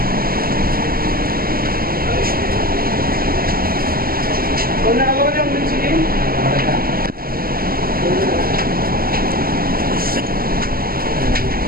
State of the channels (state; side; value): late; left; 0.43 ms